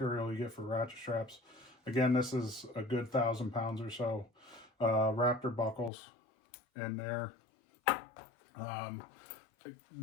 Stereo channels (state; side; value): drops out; right; at 5.9 s